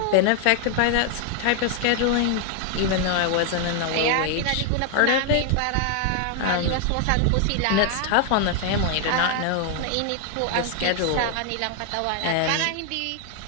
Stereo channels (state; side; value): different; both; correlation 0.00